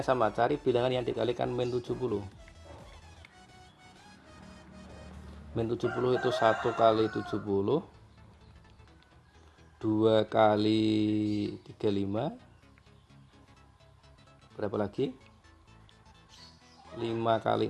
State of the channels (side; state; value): both; identical; correlation 1.00